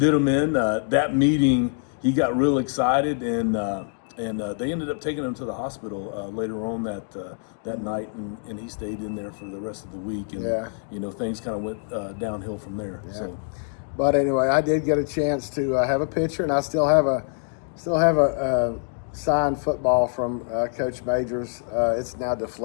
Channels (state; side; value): silent; right; 62 dB below the other